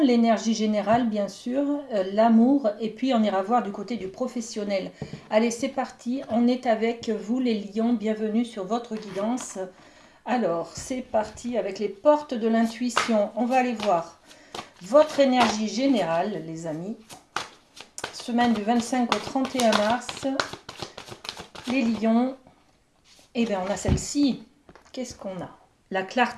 générale bien sûr, l'amour et puis on ira voir du côté du professionnel. Allez c'est parti, on est avec vous les lions, bienvenue sur votre guidance. Alors c'est parti avec les portes de l'intuition, on va aller voir votre énergie générale les amis. Semaine du 25 au 31 mars. Les lions, eh bien on a celle-ci. Qu'est-ce qu'on a? La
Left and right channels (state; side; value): identical; both; correlation 1.00